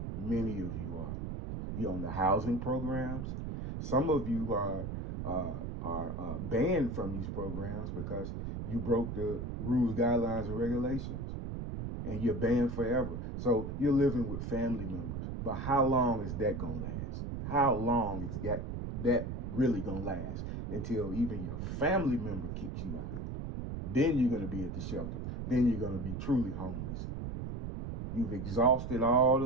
Many of you are. You're on the housing programs. Some of you are banned from these programs because you broke the rules, guidelines, and regulations. And you're banned forever. So you're living with family members. But how long is that going to last? How long is that really going to last? Until even your family member kicks you out. Then you're going to be at the shelter. Then you're going to be truly homeless. You've exhausted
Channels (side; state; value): right; noise; rumble, 5 dB below the sound